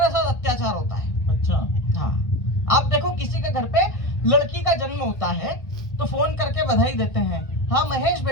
साथ अत्याचार होता है। अच्छा हाँ, आप देखो किसी के घर पे लड़की का जन्म होता है तो फोन करके बधाई देते हैं। हाँ महेश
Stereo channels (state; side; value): late; right; 1.6 ms